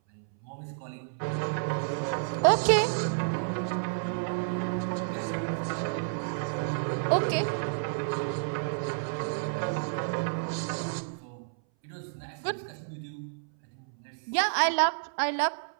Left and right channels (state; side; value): silent; left; 58 dB below the other